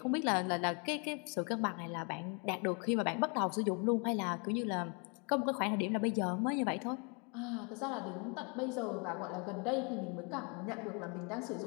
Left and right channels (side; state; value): right; quieter; 34.8 dB